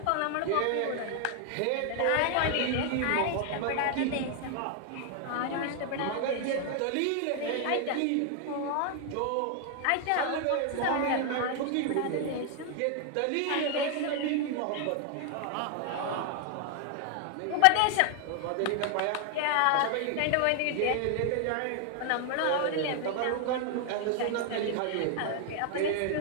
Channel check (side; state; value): both; different; correlation 0.00